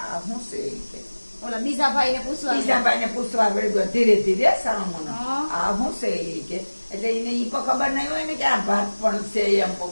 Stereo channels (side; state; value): both; inverted; correlation -1.00